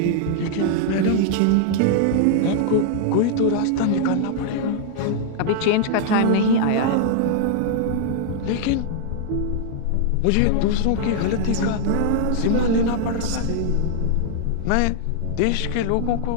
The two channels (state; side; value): different; both; correlation -0.01